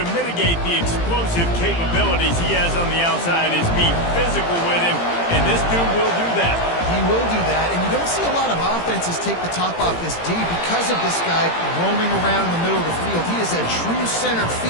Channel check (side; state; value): right; late; 18 ms